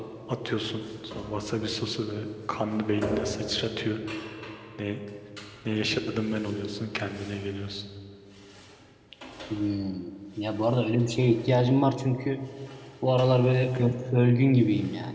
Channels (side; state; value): both; identical; correlation 1.00